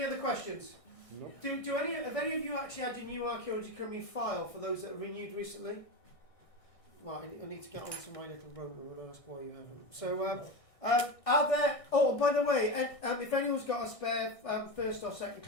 other questions? No. Have any of you actually had your new Archaeology Cymru file for those that are renewed recently? Right, I need to get onto my little rover and ask why you haven't. So, are there... Oh, by the way, if anyone's got a spare first or second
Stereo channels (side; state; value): right; late; 1.6 ms